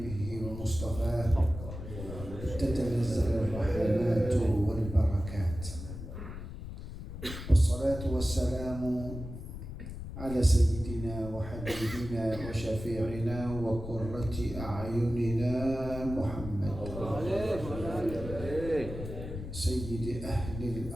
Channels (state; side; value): noise; left; rumble, 9 dB below the sound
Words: ومصطفاه تتنزل الرحمات والبركات والصلاة والسلام على سيدنا وحبيبنا وشفيعنا وقرة أعيننا محمد سيد أهل